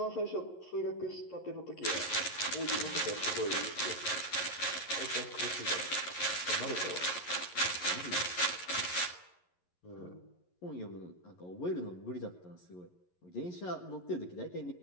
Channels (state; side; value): late; right; 11 ms